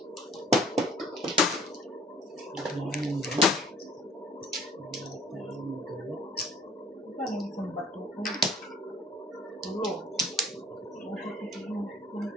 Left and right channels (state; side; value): normal; both; correlation 0.53